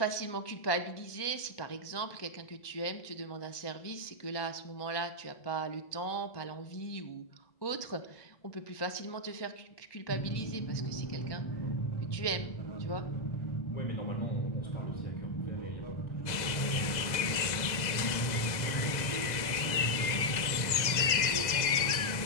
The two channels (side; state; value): right; late; 2.0 ms